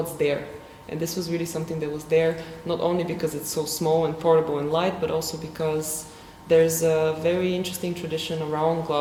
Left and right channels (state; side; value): identical; both; correlation 1.00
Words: there. And this was really something that was there, not only because it's so small and portable and light, but also because there's a very interesting tradition around